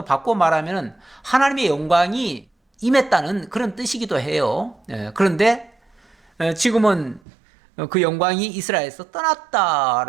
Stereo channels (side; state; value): left; drops out; at 7.2 s